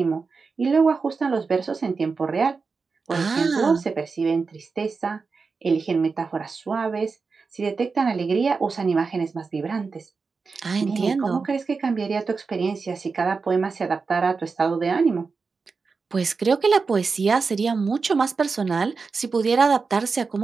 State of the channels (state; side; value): quieter; left; 4.7 dB